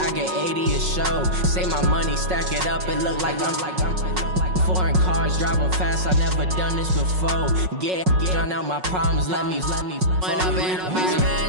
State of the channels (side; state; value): left; late; 5.4 ms